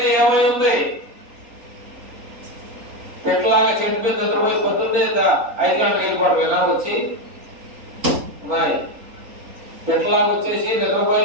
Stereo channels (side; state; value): left; late; 3.8 ms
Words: ఏమై ఉంది? పెట్టలాగా చెడిపోయింది నిద్రపోయి పొద్దున్నే 5 గంటలకు వెళ్ళిపోవడం వచ్చి పెట్టలాగా వచ్చేసి నిద్రపోయి